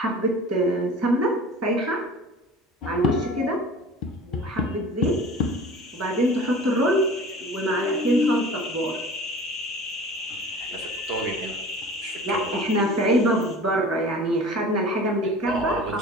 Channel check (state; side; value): normal; both; correlation 0.41